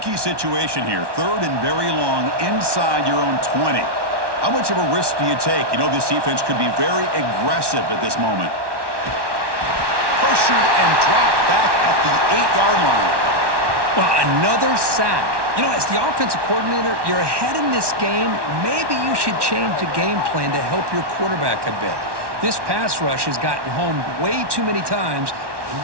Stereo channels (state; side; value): late; left; 1.1 ms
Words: situation here. 3rd and very long inside your own 20. How much of a risk do you take? You know this defense could be very aggressive at this moment. Pressured and dropped back at the 8-yard line. Well, another sack. You know, as the offensive coordinator, you're ahead in this game. Maybe you should change the game plan to help your quarterback a bit. This pass rush has gotten home way too many times, and